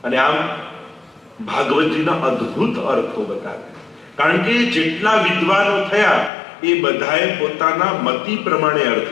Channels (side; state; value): right; drops out; at 6.3 s